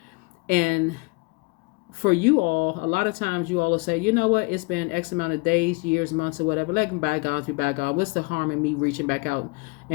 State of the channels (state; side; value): quieter; right; 28.3 dB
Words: And for you all, a lot of times you all will say, you know what, it's been X amount of days, years, months, or whatever. Let bygones be bygones. What's the harm in me reaching back out